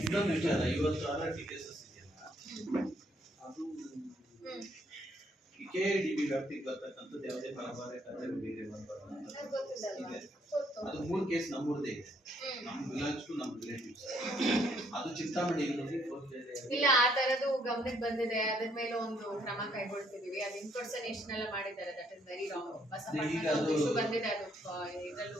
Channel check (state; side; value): normal; both; correlation 0.69